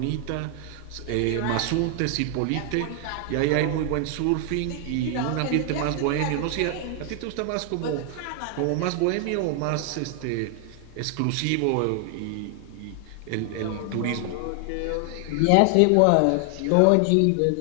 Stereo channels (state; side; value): different; both; correlation 0.00